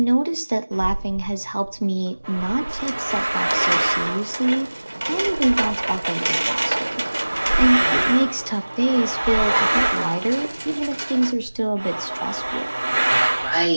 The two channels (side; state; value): both; inverted; correlation -1.00